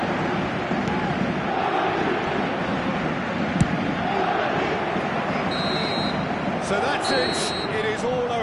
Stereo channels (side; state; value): both; identical; correlation 1.00